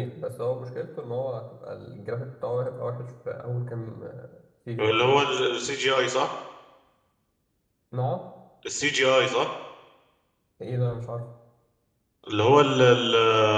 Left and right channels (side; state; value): both; identical; correlation 1.00